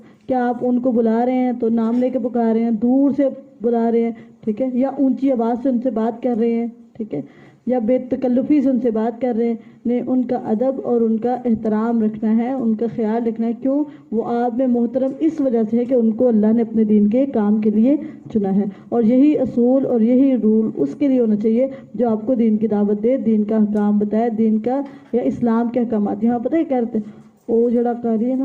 کیا آپ ان کو بلا رہے ہیں تو نام لے کے پکار رہے ہیں، دور سے بلا رہے ہیں، ٹھیک ہے، یا اونچی آواز سے ان سے بات کر رہے ہیں، ٹھیک ہے، یا بے تکلفی سے ان سے بات کر رہے ہیں؟ نہیں، ان کا ادب اور ان کا احترام رکھنا ہے، ان کا خیال رکھنا ہے۔ کیوں؟ وہ آپ میں محترم اس وجہ سے ہے کہ ان کو اللہ نے اپنے دین کے کام کے لیے چنا ہے، اور یہی اصول اور یہی رول اس کے لیے ہونا چاہیے جو آپ کو دین کی دعوت دے، دین کا احکام بتائے، دین کا یا اسلام کے احکامات۔ یہاں پتہ ہے کیا کہتے ہیں، وہ جڑا قاری ہے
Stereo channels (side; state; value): both; identical; correlation 1.00